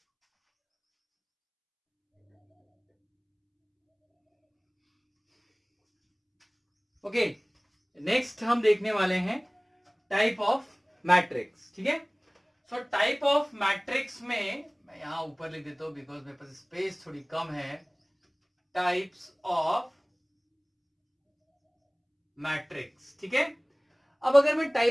Okay, next हम देखने वाले हैं टाइप ऑफ मैट्रिक्स, ठीक है। सो टाइप ऑफ मैट्रिक्स में मैं यहां ऊपर लिख देता हूं बिकॉज मेरे पास स्पेस थोड़ी कम है। टाइप्स ऑफ मैट्रिक्स, ठीक है। अब अगर मैं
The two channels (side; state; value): both; identical; correlation 1.00